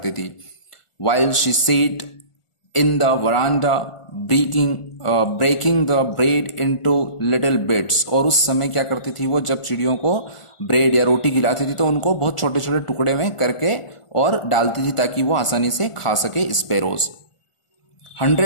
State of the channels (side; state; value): right; late; 1.4 ms